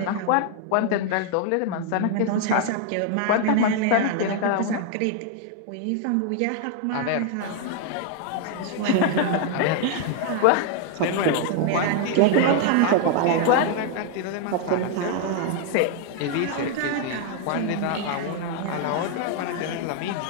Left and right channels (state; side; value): different; both; correlation 0.00